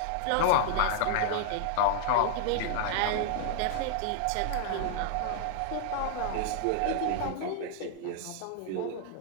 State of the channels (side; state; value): both; different; correlation 0.00